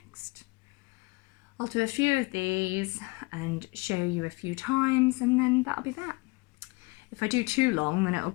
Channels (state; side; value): quieter; right; 25.4 dB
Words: I'll do a few of these and show you a few times, and then that'll be that. If I do too long, then it'll